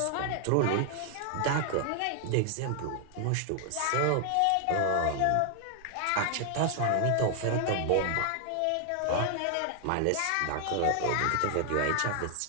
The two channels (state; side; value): different; both; correlation 0.00